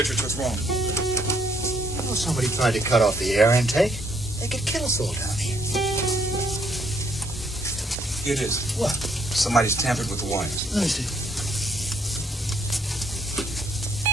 what's wrong? Well, somebody tried to cut off the air intake. They could kill us all down here. It is. What? Somebody's tampered with the wires. Let me see.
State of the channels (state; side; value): normal; both; correlation 0.68